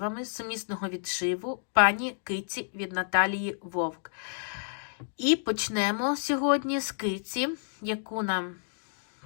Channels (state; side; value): silent; right; digital silence